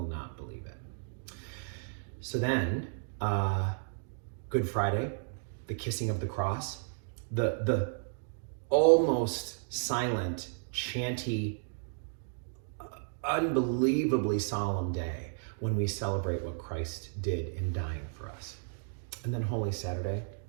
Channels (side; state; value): left; silent; digital silence